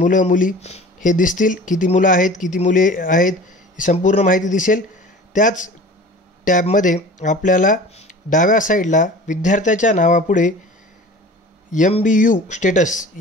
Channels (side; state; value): both; normal; correlation 0.41